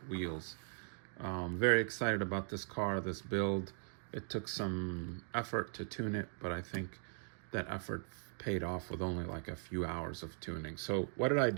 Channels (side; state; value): left; silent; digital silence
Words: wheels. Very excited about this car, this build. It took some effort to tune it, but I think that effort paid off with only like a few hours of tuning. So what did I